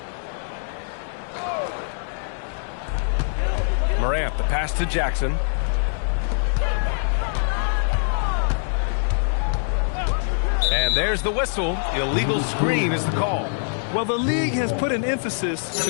Morant, the pass to Jackson. And there's the whistle. Illegal screen is the call. Well, the league has put an emphasis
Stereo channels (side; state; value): right; silent; digital silence